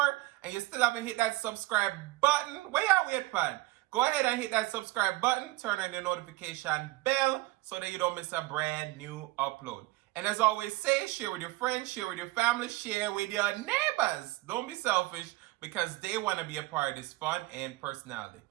and you still haven't hit that subscribe button, where y'all wait for? Go ahead and hit that subscribe button, turn on the notification bell, so that you don't miss a brand new upload. And as always say, share with your friends, share with your family, share with your neighbors. Don't be selfish, because they want to be a part of this fun and personality.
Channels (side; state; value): left; quieter; 19.9 dB